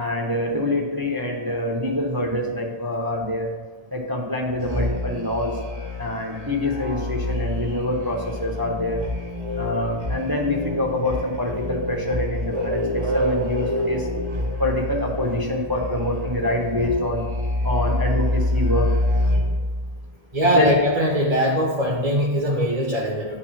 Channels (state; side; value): late; left; 1.0 ms